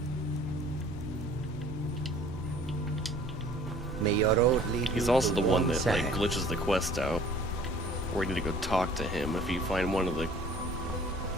May your road lead He's also the one that like glitches the quest out, where you need to go talk to him if you find one of the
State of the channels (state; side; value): normal; both; correlation 0.51